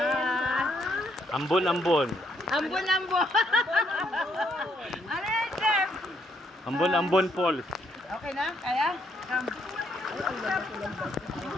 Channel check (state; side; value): normal; both; correlation 0.72